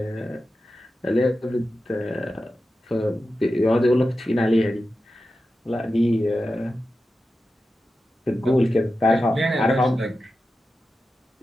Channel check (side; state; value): both; normal; correlation 0.92